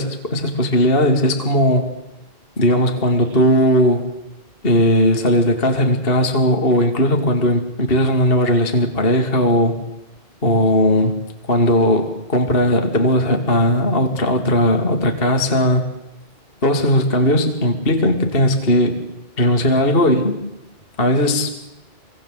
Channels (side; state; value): right; late; 2.7 ms